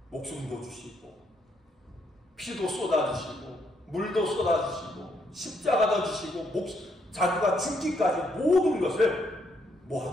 목숨도 주시고 피도 쏟아주시고 물도 쏟아주시고 십자가도 주시고 자기가 죽기까지 모든 것을 뭐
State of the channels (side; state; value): both; normal; correlation 0.74